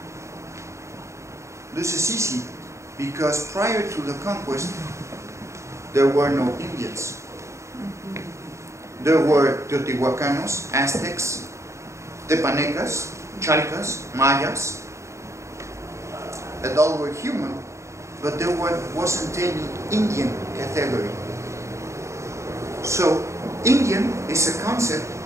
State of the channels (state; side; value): late; left; 0.14 ms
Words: This is easy because prior to the conquest there were no Indians. There were Teotihuacanos, Aztecs, Tepanecas, Chalcas, Mayas, and all were human, but there wasn't any Indian category. So, Indian is a concept